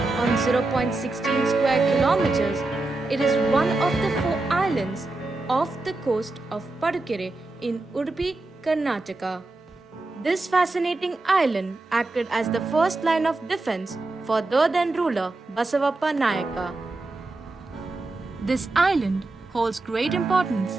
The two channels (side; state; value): left; quieter; 3.1 dB